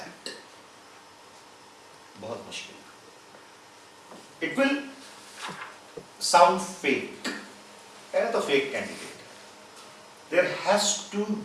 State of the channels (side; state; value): both; identical; correlation 1.00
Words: बहुत मुश्किल. It will sound fake. है तो fake candidate. There has to